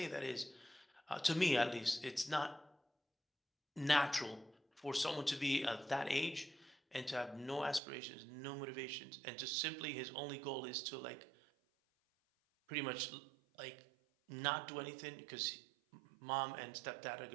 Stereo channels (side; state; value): left; drops out; at 7.8 s